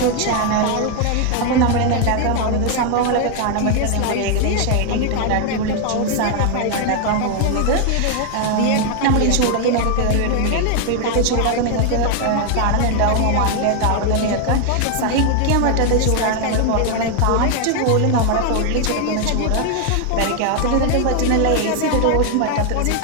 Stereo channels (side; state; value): both; different; correlation 0.00